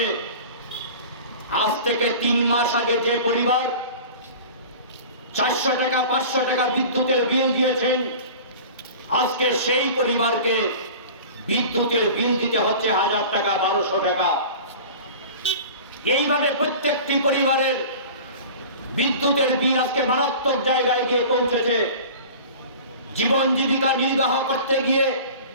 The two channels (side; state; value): both; inverted; correlation -0.39